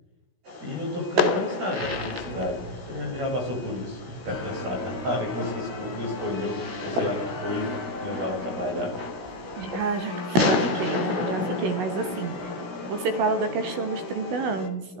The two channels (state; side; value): late; left; 16 ms